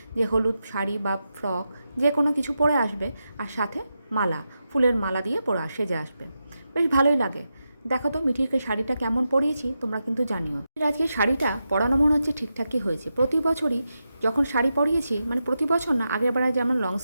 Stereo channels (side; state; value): both; inverted; correlation -0.88